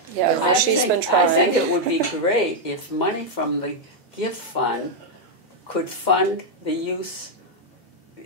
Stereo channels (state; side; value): normal; both; correlation -0.01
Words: Yeah, Yeah. she's been I trying. think it would be great if money from the gift fund could fund